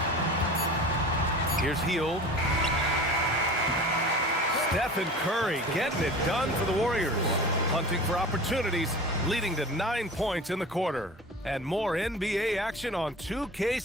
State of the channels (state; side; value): normal; both; correlation 0.37